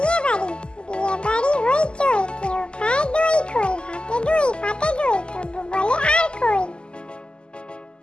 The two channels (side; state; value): right; late; 0.050 ms